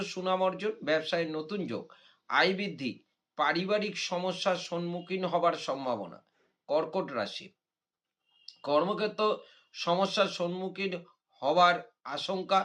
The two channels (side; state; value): both; identical; correlation 1.00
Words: সুনাম অর্জন, ব্যবসায় নতুন যোগ, আয় বৃদ্ধি, পারিবারিক সমস্যার সম্মুখীন হবার সম্ভাবনা। কর্কট রাশি, কর্মক্ষেত্র সমস্যার সম্মুখীন হবার আশঙ্কা,